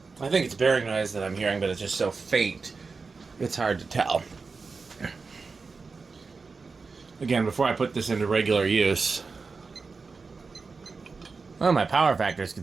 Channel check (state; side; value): quieter; left; 4.5 dB